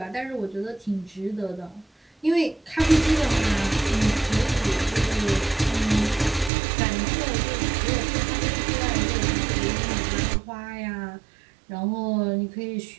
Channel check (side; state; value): left; drops out; at 6.5 s